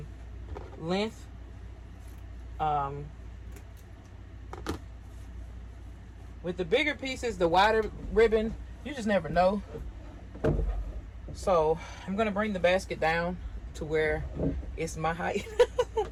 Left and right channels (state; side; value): identical; both; correlation 1.00